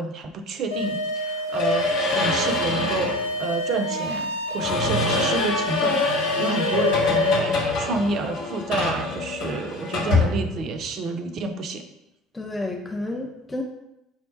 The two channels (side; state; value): both; normal; correlation 0.34